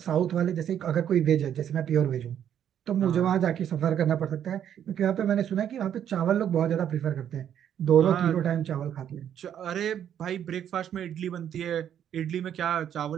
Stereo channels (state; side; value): quieter; left; 9.7 dB